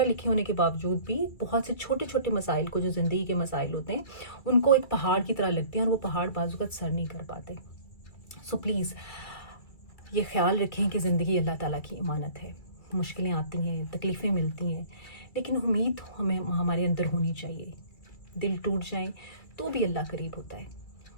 لکھے ہونے کے باوجود بھی بہت سے چھوٹے چھوٹے مسائل کو, جو زندگی کے مسائل ہوتے ہیں, ان کو ایک پہاڑ کی طرح لگتے ہیں اور وہ پہاڑ بعض اوقات سر نہیں کر پاتے. سو پلیز یہ خیال رکھیں کہ زندگی اللہ تعالیٰ کی امانت ہے. مشکلیں آتی ہیں, تکلیفیں ملتی ہیں, لیکن امید ہمیں ہمارے اندر ہونی چاہیے. دل ٹوٹ جائیں تو بھی اللہ قریب ہوتا ہے.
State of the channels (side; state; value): right; late; 2.3 ms